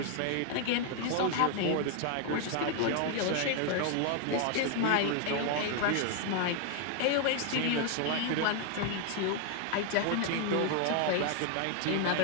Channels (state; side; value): different; both; correlation 0.00